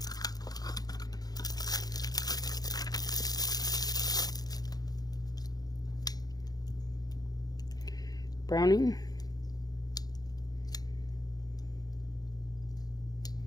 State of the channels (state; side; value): late; right; 0.19 ms